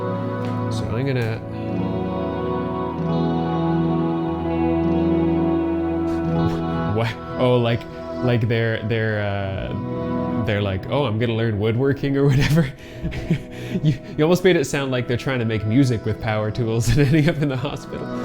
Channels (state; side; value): identical; both; correlation 1.00